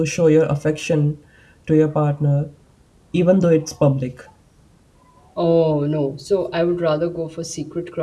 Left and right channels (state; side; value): identical; both; correlation 1.00